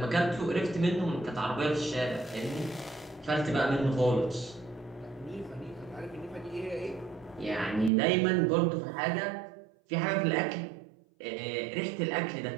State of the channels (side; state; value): left; drops out; at 7.9 s